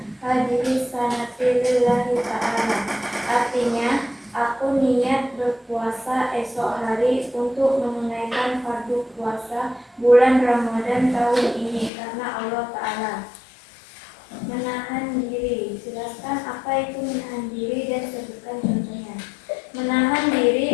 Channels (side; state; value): right; drops out; at 11.9 s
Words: hadiri sanati lillahi ta'ala. Artinya, aku niat berpuasa esok hari untuk menunaikan fardu puasa bulan Ramadan tahun ini karena Allah Ta'ala. Menahan diri. Jelaskan apa itu menahan diri dan sebutkan contohnya. Menahan